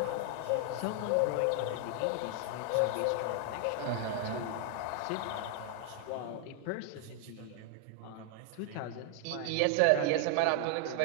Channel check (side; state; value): both; different; correlation 0.00